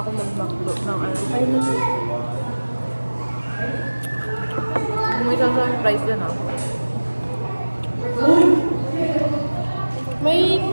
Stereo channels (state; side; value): inverted; both; correlation -1.00